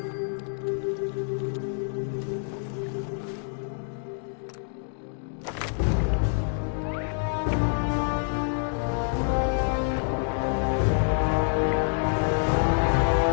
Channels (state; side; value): silent; right; 60 dB below the other